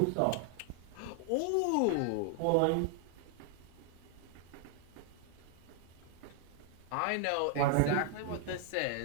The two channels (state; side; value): different; both; correlation 0.00